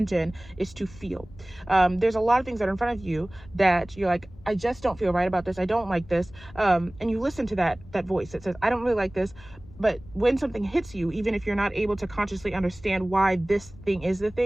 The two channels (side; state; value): left; noise; rumble, 20 dB below the sound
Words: is to feel. There's a lot of things that are in front of you that you're like, I just don't feel right about this. I don't like this. And you listen to that voice that says, I don't really like this. But when something hits you, even if you're not able to consciously understand why this thing is the